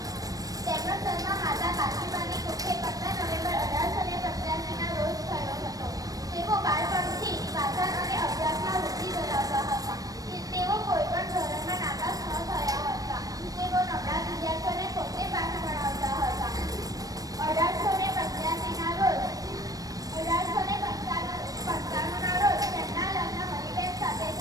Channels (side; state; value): left; late; 0.18 ms